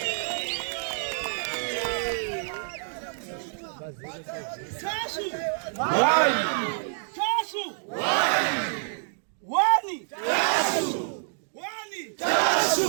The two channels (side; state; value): left; silent; digital silence